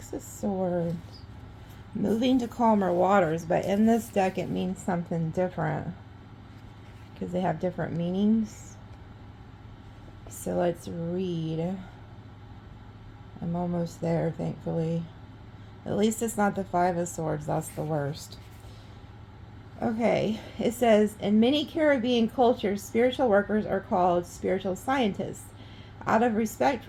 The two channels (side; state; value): both; identical; correlation 1.00